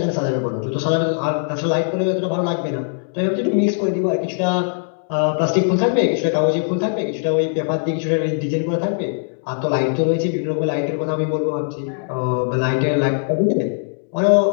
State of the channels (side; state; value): right; silent; digital silence